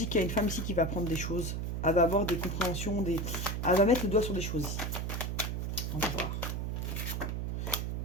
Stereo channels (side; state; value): right; noise; hum, 2 dB below the sound